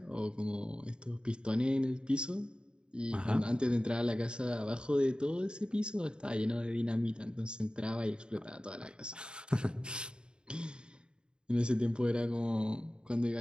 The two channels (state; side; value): late; left; 0.050 ms